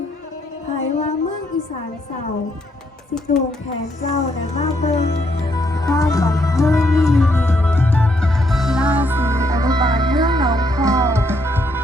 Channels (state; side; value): normal; both; correlation 0.74